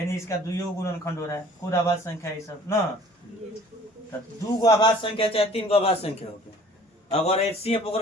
इसका 2 गुणनखंड हो रहा है। खुद अभाज्य संख्या है सब ना, तो 2 गो अभाज्य संख्या चाहे 3 गो अभाज्य संख्या हो गया। अगर HCF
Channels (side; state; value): both; normal; correlation 0.52